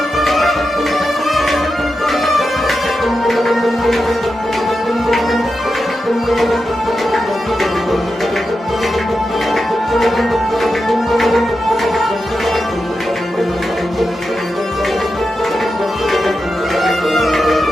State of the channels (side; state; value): both; normal; correlation 0.89